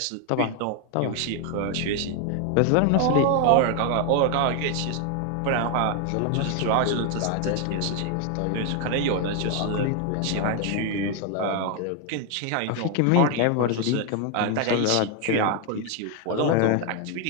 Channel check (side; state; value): both; different; correlation 0.01